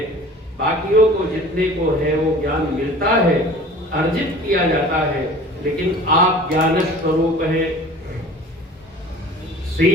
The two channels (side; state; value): both; normal; correlation 0.44